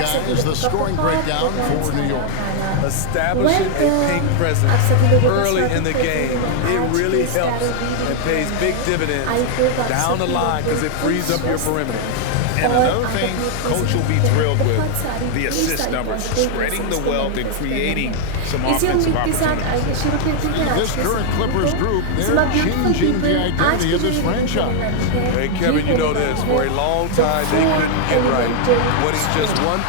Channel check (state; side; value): different; both; correlation 0.00